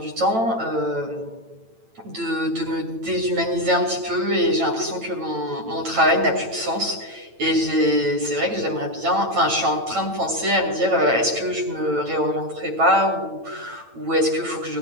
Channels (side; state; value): left; late; 8.9 ms